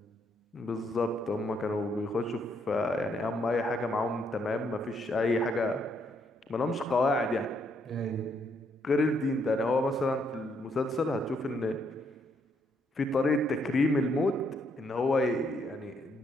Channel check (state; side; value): normal; both; correlation 0.73